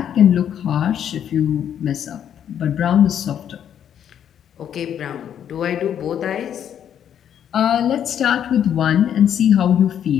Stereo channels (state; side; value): quieter; right; 9.4 dB